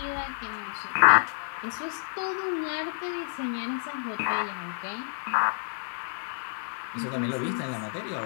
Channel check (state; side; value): silent; right; 58 dB below the other